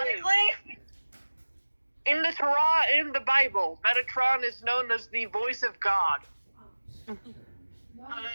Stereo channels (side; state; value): both; inverted; correlation -1.00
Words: Honestly, In the Torah and in the Bible, Metatron is known as the voice of God. I